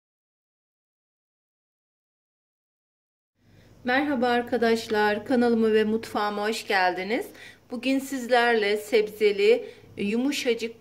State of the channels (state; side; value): identical; both; correlation 1.00